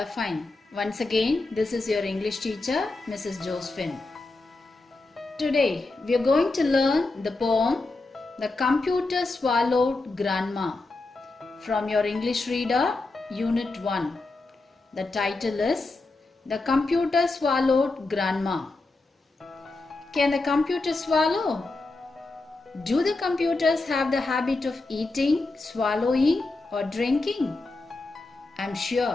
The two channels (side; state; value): right; quieter; 3.3 dB